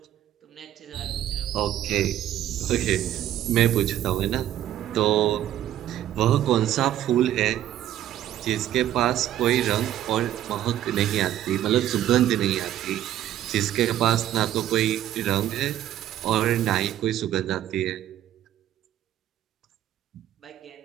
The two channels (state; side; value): quieter; left; 12.1 dB